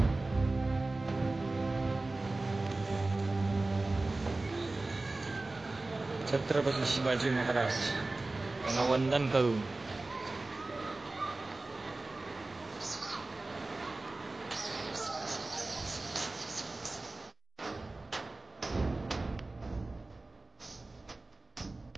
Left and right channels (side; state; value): left; quieter; 3.1 dB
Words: छत्रपती शिवाजी महाराज यांना वंदन करून